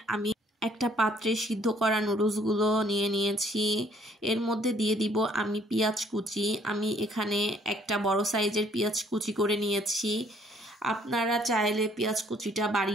আমি একটা পাত্রে সিদ্ধ করা নুডলসগুলো নিয়েছি। এর মধ্যে দিয়ে দিব আমি পেঁয়াজ কুচি। আমি এখানে একটা বড় সাইজের পেঁয়াজ কুচি করে নিয়েছি। আপনারা চাইলে পেঁয়াজ কুচিটা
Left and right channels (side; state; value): both; normal; correlation 0.62